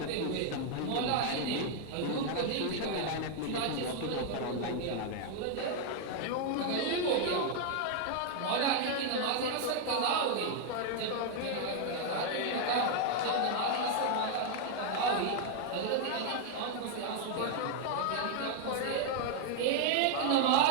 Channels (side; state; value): both; different; correlation 0.00